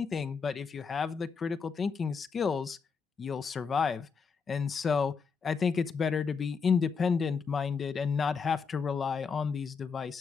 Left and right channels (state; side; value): quieter; right; 5.6 dB